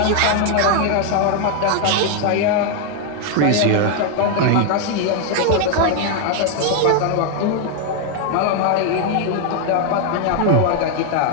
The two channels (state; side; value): different; both; correlation 0.00